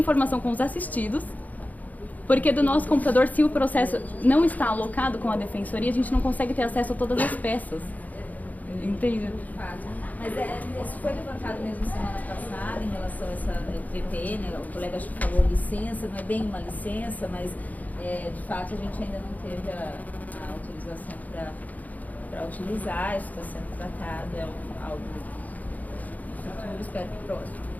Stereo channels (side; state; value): right; late; 0.078 ms